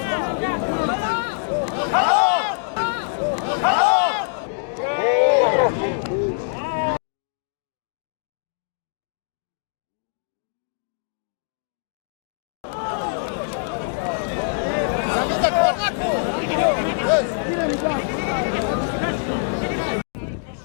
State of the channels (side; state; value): right; silent; digital silence